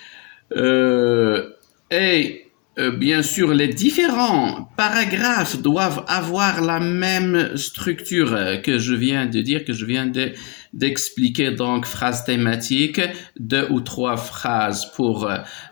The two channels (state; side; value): quieter; right; 27.7 dB